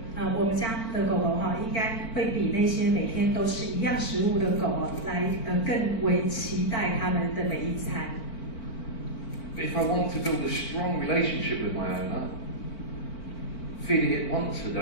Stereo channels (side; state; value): right; late; 4.5 ms